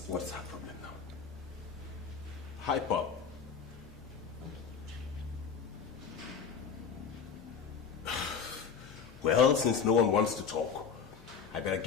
her problem now? Hi, Pop. Well, since no one wants to talk, I better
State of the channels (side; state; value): right; quieter; 6.4 dB